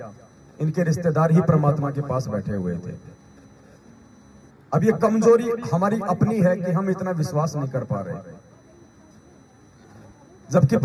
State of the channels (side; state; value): both; identical; correlation 1.00